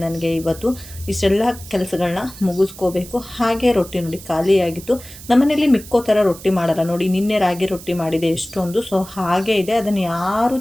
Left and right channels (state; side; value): noise; right; hiss, 17 dB below the sound